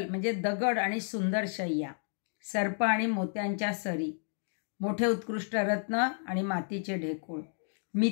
म्हणजे दगड आणि सुंदर शय्या, सर्प आणि मोत्यांच्या सरी, मोठे उत्कृष्ट रत्न आणि मातीचे ढेकूळ,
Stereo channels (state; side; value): silent; right; digital silence